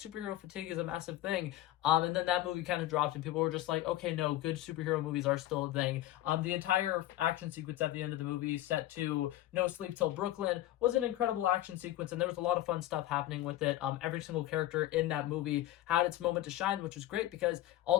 fatigue is a massive thing, and then that movie kind of dropped and people were just like, okay, no, good superhero movies are still a thing. The entire action sequence at the end of the movie, set to No Sleep Till Brooklyn, was an incredible action sequence, and there was a lot of fun stuff happening with it. Every single character in that movie had its moment to shine, which was great, because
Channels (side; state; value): right; quieter; 14.5 dB